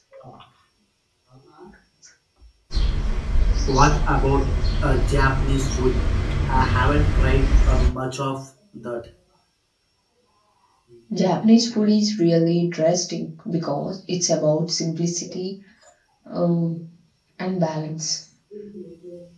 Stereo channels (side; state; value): both; identical; correlation 1.00